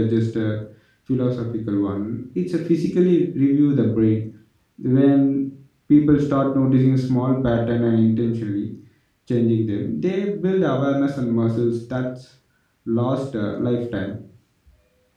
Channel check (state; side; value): identical; both; correlation 1.00